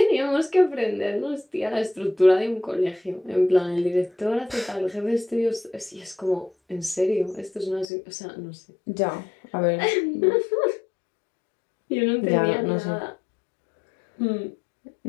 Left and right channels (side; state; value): right; drops out; at 7.9 s